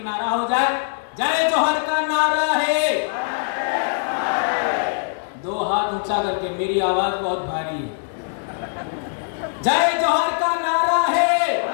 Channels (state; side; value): silent; right; 64 dB below the other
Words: नारा हो जाए, जय जोहार का नारा है। 2 हाथ ऊंचा करके, मेरी आवाज बहुत भारी है। जय जोहार का नारा है,